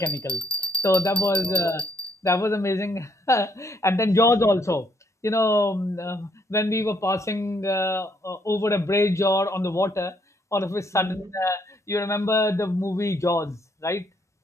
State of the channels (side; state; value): both; normal; correlation 0.71